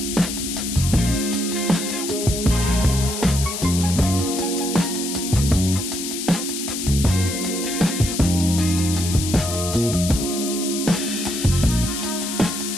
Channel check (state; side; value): noise; left; hiss, 5 dB below the sound